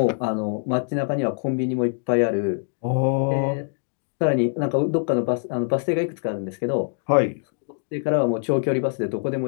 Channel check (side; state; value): right; silent; digital silence